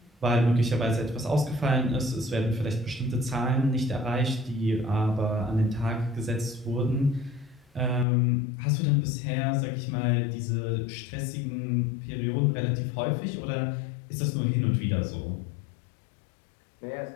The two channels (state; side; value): drops out; right; at 8.1 s